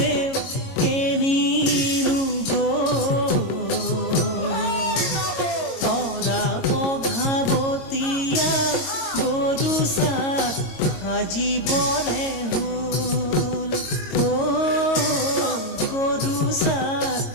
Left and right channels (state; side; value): late; right; 22 ms